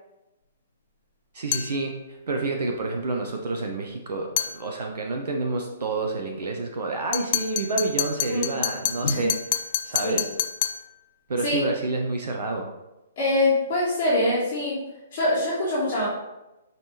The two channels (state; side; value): inverted; both; correlation -0.51